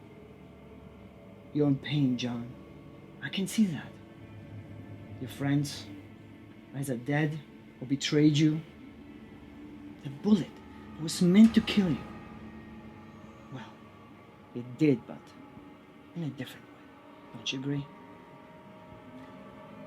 You're in pain, John. I can see that. Your friends, either dead or betrayed you. The bullet was meant to kill you. It did, but in a different way. Don't you agree?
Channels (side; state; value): both; identical; correlation 1.00